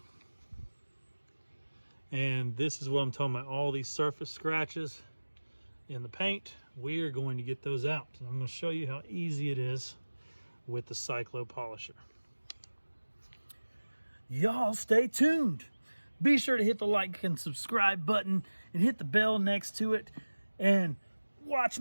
And this is what I'm talking about, all these surface scratches in the paint. We are going to get those out. And I'm going to show you how easy it is with the Cyclo Polisher. Y'all stay tuned. Be sure to hit the like and subscribe button and hit the bell next to it and watch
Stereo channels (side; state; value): both; inverted; correlation -1.00